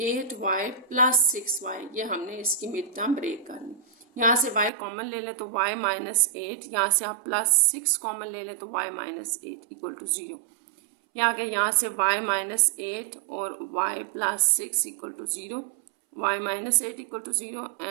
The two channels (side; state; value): left; drops out; at 4.7 s